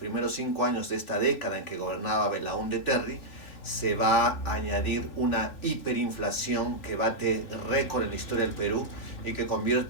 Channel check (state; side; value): late; right; 3.2 ms